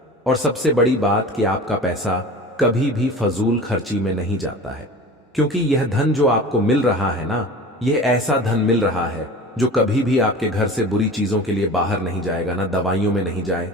और सबसे बड़ी बात कि आपका पैसा कभी भी फजूल खर्ची में नहीं जाता है, क्योंकि यह धन जो आपको मिल रहा है ना, यह ऐसा धन मिल रहा है जो कभी भी आपके घर से बुरी चीजों के लिए बाहर नहीं जाएगा, ना दवाइयों में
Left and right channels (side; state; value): both; normal; correlation 0.37